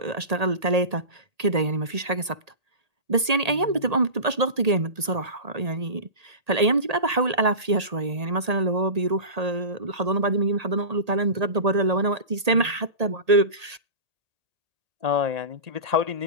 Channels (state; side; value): late; left; 1.8 ms